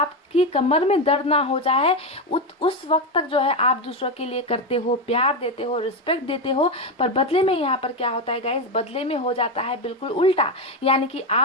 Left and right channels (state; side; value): normal; both; correlation 0.12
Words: कमर में दर्द ना हो जाए उस वक्त तक जो है आप दूसरों के लिए करते हो, प्यार देते हो, रिस्पेक्ट देते हो। पर बदले में यहाँ पर क्या होता है गाइस, बदले में हो जाता है बिल्कुल उल्टा। यानी कि